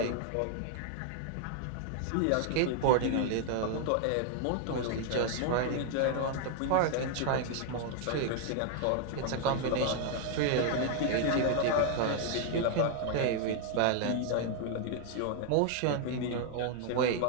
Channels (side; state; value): both; different; correlation 0.00